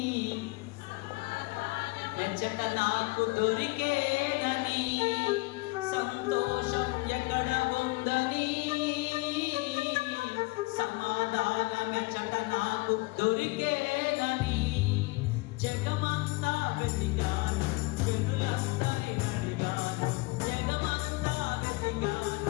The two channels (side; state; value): right; quieter; 24.3 dB